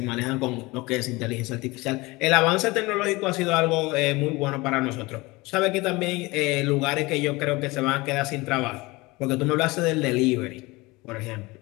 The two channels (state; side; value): quieter; right; 22.8 dB